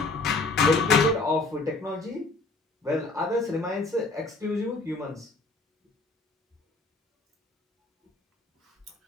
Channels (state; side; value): quieter; right; 3.4 dB